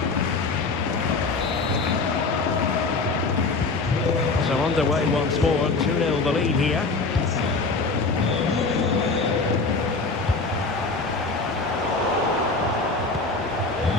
So underway once more, 2-0 the lead here.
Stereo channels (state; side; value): quieter; right; 3.9 dB